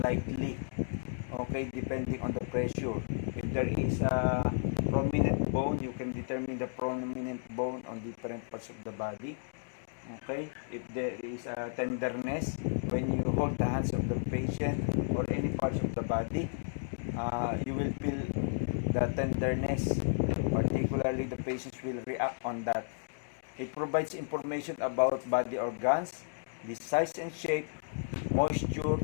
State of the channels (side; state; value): right; silent; digital silence